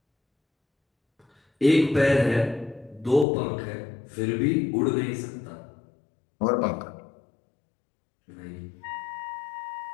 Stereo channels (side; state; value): right; drops out; at 3.2 s